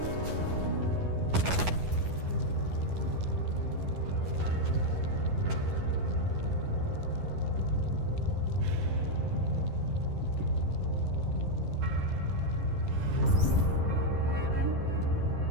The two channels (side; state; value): left; late; 11 ms